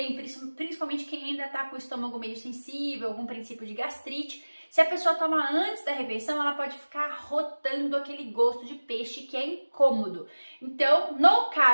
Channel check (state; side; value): inverted; both; correlation -1.00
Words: principalmente quem ainda está com o estômago meio sensível, algum princípio de gastrite. Se a pessoa toma antes da refeição, ela pode ficar rotando aquele gosto de peixe que é incômodo. Então, no